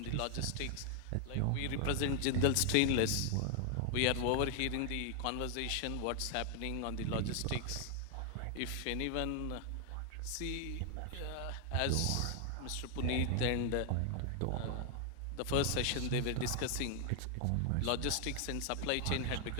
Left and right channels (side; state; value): both; different; correlation 0.00